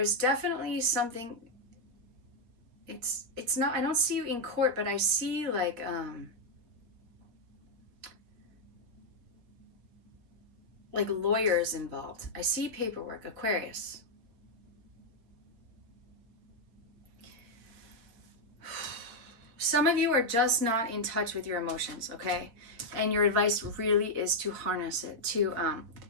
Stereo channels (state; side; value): late; left; 4.4 ms